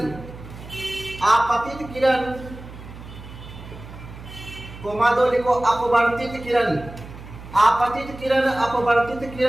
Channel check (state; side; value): noise; right; hum, 15 dB below the sound